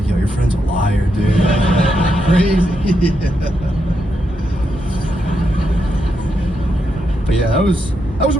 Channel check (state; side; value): normal; both; correlation 0.82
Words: like, yo, your friend's a liar, dude. Crazy. But yeah, that was a